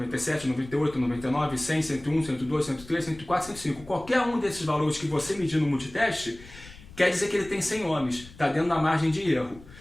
98, 99, 100, 101, 102, 103, 104, 105. Qualquer um desses valores que você medir no multiteste, quer dizer que ele tem 100 ohms, está dentro da margem de erro,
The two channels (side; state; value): left; noise; rumble, 19 dB below the sound